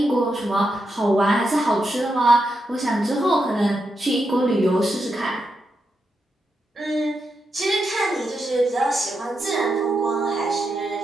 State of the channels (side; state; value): both; normal; correlation 0.85